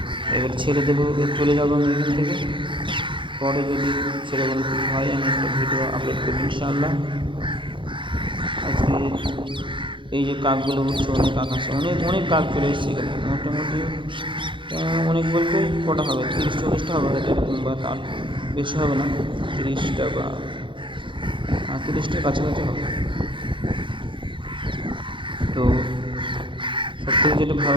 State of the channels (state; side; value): late; left; 0.24 ms